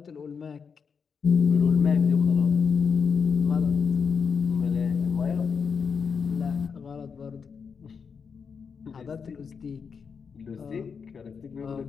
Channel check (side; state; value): right; quieter; 6.0 dB